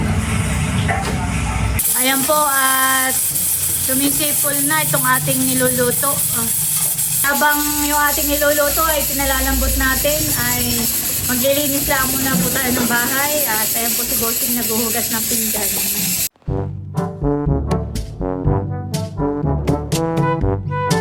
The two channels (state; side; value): identical; both; correlation 1.00